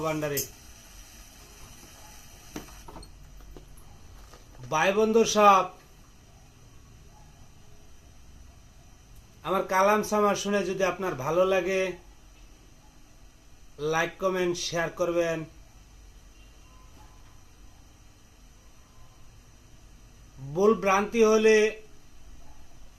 ভান্ডারী। ভাই বন্ধু সব, আমার কালাম সামা শুনে যদি আপনার ভালো লাগে, লাইক কমেন্ট শেয়ার করবেন। ভুল ভ্রান্তি হলে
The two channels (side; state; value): both; identical; correlation 1.00